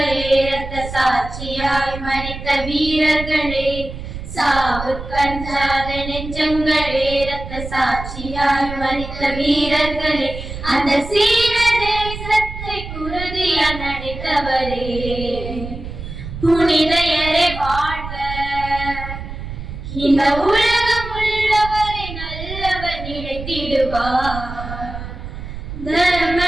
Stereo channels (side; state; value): right; noise; rumble, 9 dB below the sound